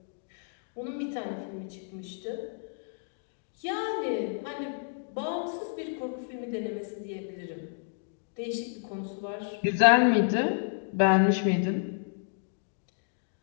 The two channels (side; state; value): right; silent; digital silence